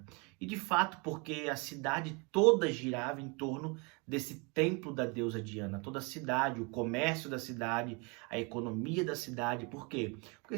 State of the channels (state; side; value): quieter; left; 30.8 dB